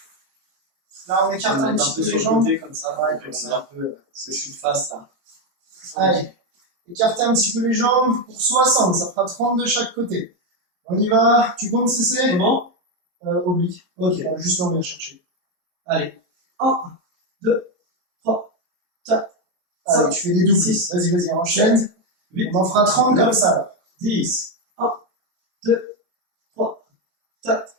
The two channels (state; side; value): late; left; 22 ms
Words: Là, on écarte un petit peu les jambes. Comme ça, ouais, comme ça. Un peu, parce que je suis de face là. Allez, écartez un petit peu les jambes pour 60, ça fera 30 de chaque côté. On y va, tu comptes CC? Comment? Oblique. Ok, juste là, on vient chercher. Allez, 1, 2, 3, 4, Allez, 5, tu fais des doubles. 6, vas-y, enchaîne. 8, on en fera 30 comme ça là. 10, 1, 2, 3, 4,